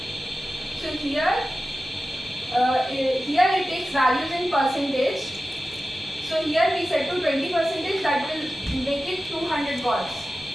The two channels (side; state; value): both; normal; correlation 0.93